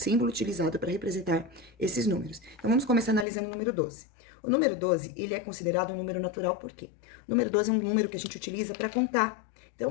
utilizado para representar esses números. Então, vamos começar analisando o número 12. O número 12, ele é considerado um número natural por quê? O número 12 é um número que a gente utiliza para contar. Então,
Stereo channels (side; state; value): right; drops out; at 3.2 s